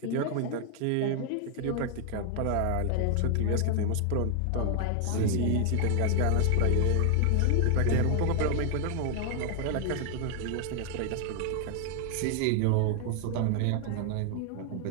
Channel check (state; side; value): different; both; correlation 0.00